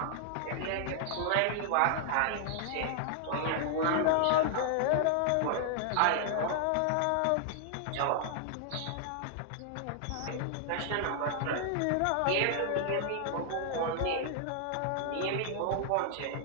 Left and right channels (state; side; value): different; both; correlation -0.01